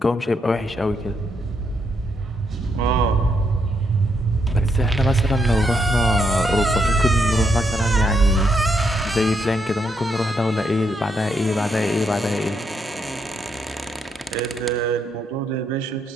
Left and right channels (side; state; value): both; normal; correlation 0.77